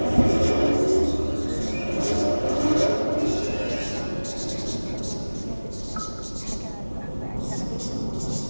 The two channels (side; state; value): both; inverted; correlation -1.00